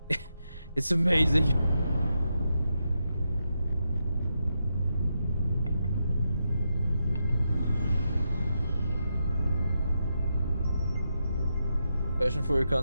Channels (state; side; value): inverted; both; correlation -0.85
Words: it's amazing. Passion for your